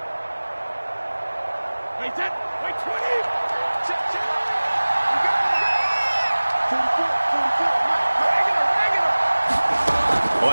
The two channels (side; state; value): both; inverted; correlation -1.00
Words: Wait 10, wait 20.